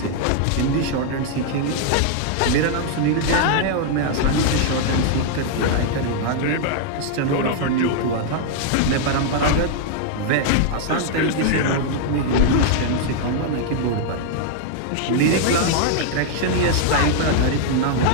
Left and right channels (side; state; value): both; different; correlation -0.01